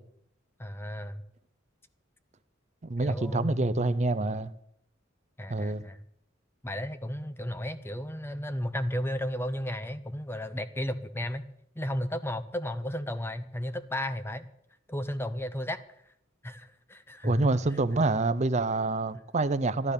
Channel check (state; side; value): normal; both; correlation 0.60